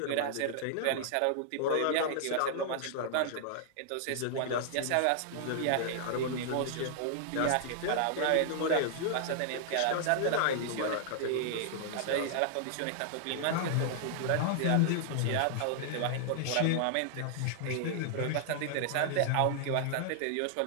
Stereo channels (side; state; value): both; different; correlation -0.01